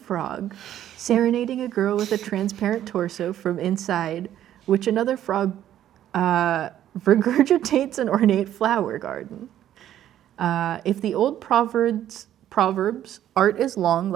serenading a girl with a transparent torso from inside, which another frog regurgitates an ornate flower garden. If the old proverbs, art is long,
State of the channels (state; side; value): quieter; left; 11.6 dB